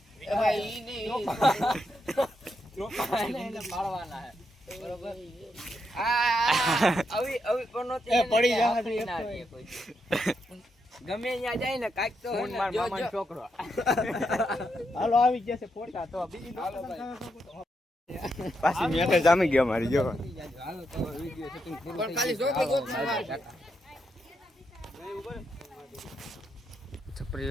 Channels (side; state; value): both; normal; correlation 0.81